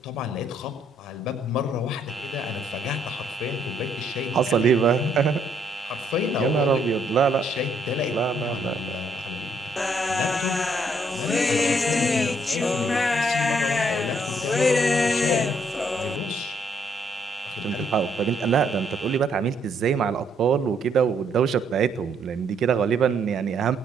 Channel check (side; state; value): both; normal; correlation 0.70